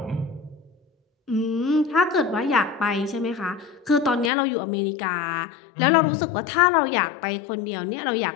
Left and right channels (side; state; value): right; drops out; at 4.3 s